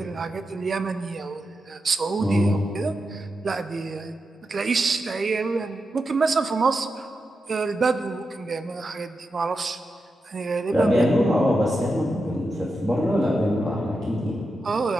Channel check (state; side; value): normal; both; correlation 0.88